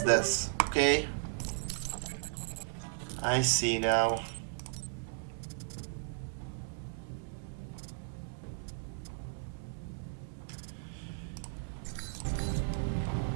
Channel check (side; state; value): left; silent; digital silence